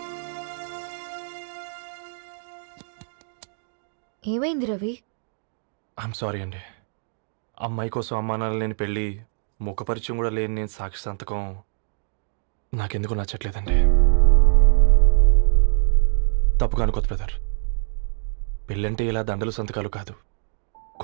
ఏమైంది రవి? ఐఎమ్ సారీ అండి. అమ్మాయి కోసం అమ్మానాలు లేని పెళ్ళి, ముఖపరిచయం కూడా లేని నేను సాక్షి సంతకం నాకెందుకు నచ్చట్లేదండి. తప్పుగా అనుకోదు బ్రదర్. పెళ్ళంటే ఇలా దండలు సంతకాలు కాదు,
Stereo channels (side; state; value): left; silent; digital silence